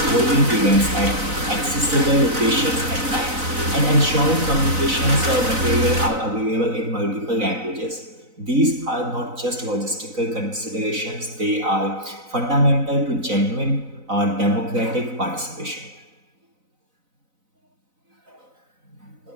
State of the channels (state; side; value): late; left; 4.0 ms